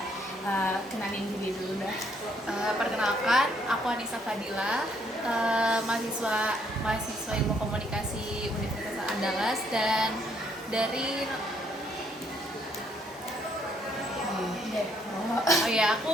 Kenalin diri dulu dah. Perkenalkan, aku Anissa Fadila, mahasiswa Ilmu Komunikasi Universitas Andalas dan dari aku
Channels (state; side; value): normal; both; correlation 0.69